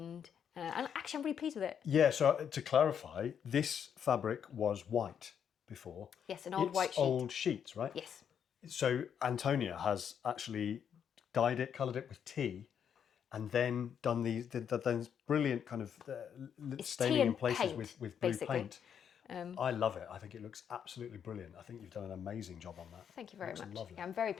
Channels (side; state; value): right; quieter; 8.1 dB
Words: And actually, I'm really pleased with it. Yeah, so to clarify, this fabric was white before. Yes, an old white sheet. Old sheets, right? Yes. So Antonia has actually dyed it, coloured it with tea, and then done these brilliant kind of staining in places paint, with blue basically. paint. I love it. I think it looks absolutely brilliant. I think you've done an amazing job on that. Thank you very much. Lovely. Yeah, I'm very